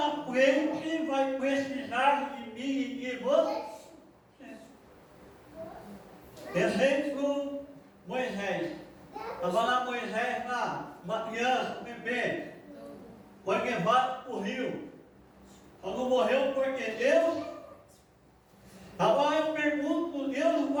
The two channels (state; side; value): identical; both; correlation 1.00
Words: frente vai precisar de mim e de você. Exemplo, Moisés. Estava lá Moisés, uma criança, um bebê, foi levado para o rio. Só não morreu porque Deus. Agora eu pergunto, Deus